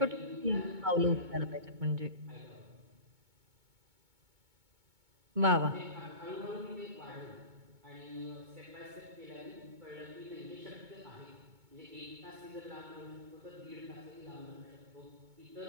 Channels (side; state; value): left; late; 2.2 ms